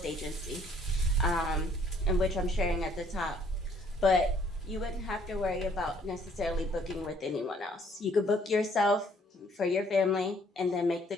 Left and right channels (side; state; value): both; normal; correlation 0.63